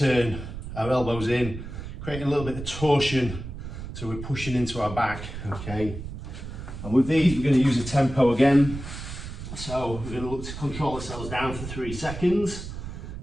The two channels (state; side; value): noise; right; rumble, 9 dB below the sound